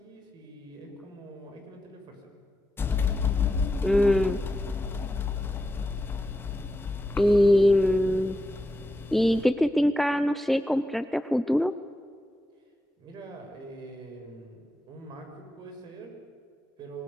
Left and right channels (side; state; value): both; normal; correlation 0.89